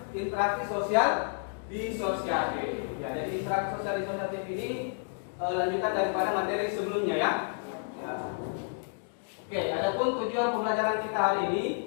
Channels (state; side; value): silent; right; digital silence